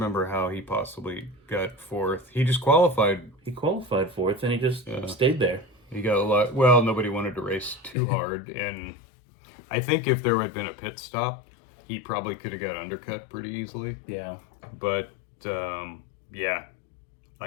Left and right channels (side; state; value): right; drops out; at 8.0 s